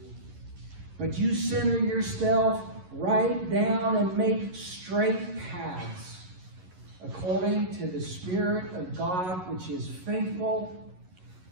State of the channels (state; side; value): late; left; 11 ms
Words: But you center yourself right down and make straight paths according to the Spirit of God, which is faithful